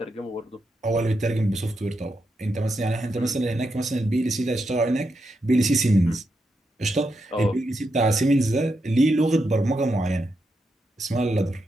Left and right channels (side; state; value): both; normal; correlation 0.84